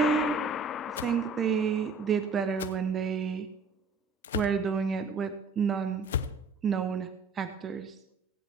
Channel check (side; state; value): left; quieter; 3.9 dB